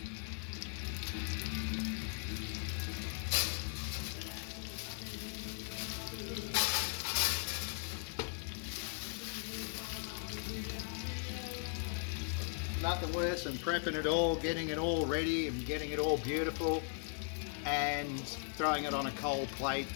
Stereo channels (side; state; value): right; silent; 52 dB below the other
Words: Nothing worse than prepping it all, getting it all ready and getting it all beautiful and throwing it on a cold plate